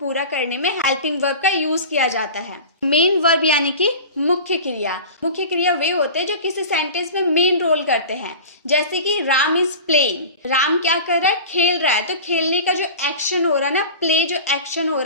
करने में हेल्पिंग वर्ब का यूज किया जाता है। मेन वर्ब यानी कि मुख्य क्रिया। मुख्य क्रिया वे होते हैं जो किसी सेंटेंस में मेन रोल करते हैं। जैसे कि राम इज प्लेइंग, राम क्या कर रहा है, खेल रहा है। तो खेलने का जो एक्शन हो रहा है ना, प्ले जो एक्शन हो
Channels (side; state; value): both; inverted; correlation -0.35